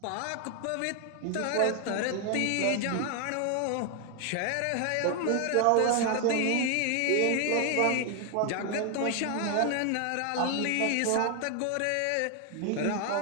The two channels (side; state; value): both; different; correlation 0.00